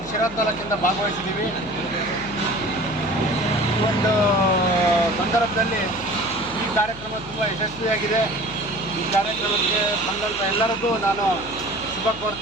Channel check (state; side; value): noise; left; hum, 17 dB below the sound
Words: ಶಿರಾ ತಾಲೂಕಿಂದ ಭಾಗವಹಿಸಿದ್ದೀವಿ. ಈ ಒಂದು ಸಂದರ್ಭದಲ್ಲಿ ಈ ಕಾರ್ಯಕ್ರಮ ತುಂಬ ಯಶಸ್ವಿಯಾಗಿದೆ. ಈ ಕಾರ್ಯಕ್ರಮಕ್ಕೆ ಬಂದಂಥ ಎಲ್ಲರಿಗೂ ನಾನು ಶುಭ